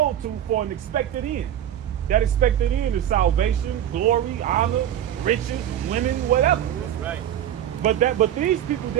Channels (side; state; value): left; quieter; 10.9 dB